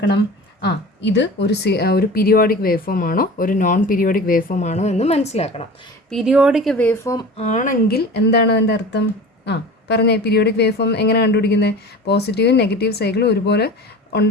ഇത് ഒരു പീരിയോഡിക് വേവ് ഫോം ആണോ ഒരു നോൺ പീരിയോഡിക് വേവ് ഫോം ആണോ എന്ന് മനസ്സിലാക്കണം. പീരിയോഡിക് വേവ് ഫോം ആണെങ്കിൽ എന്താണ് അതിൻ്റെ അർത്ഥം? പറഞ്ഞേ, പീരിയോഡിക് വേവ് ഫോം എങ്ങനെ കണ്ടുപിടിക്കുന്നത്? പോസിറ്റീവും നെഗറ്റീവ് സൈക്കിളും ഒരുപോലെ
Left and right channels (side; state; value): both; normal; correlation 0.36